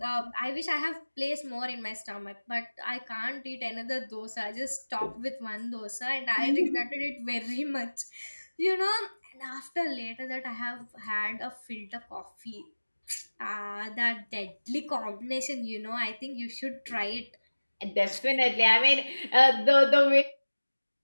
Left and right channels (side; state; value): both; inverted; correlation -1.00